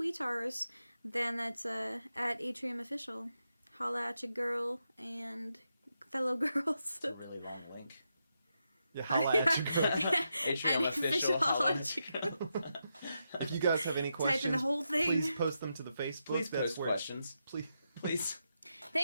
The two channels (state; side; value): inverted; both; correlation -0.85